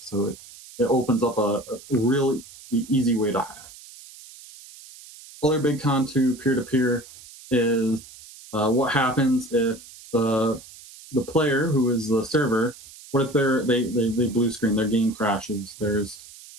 it opens up a really easy way to hack. Other big con to peer-to-peer is what happens if the player, who is the server, what if they blue screen, their game crashes, there's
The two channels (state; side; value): noise; right; hiss, 19 dB below the sound